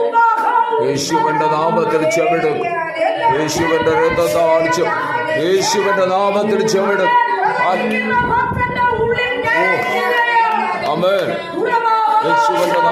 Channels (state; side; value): identical; both; correlation 1.00